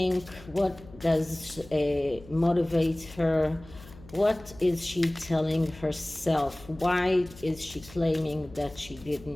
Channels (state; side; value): noise; left; hum, 20 dB below the sound